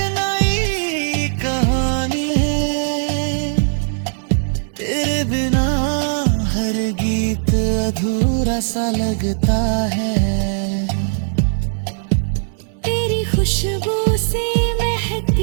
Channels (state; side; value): silent; left; digital silence